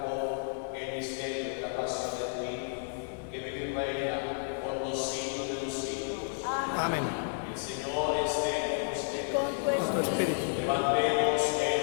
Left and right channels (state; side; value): silent; right; digital silence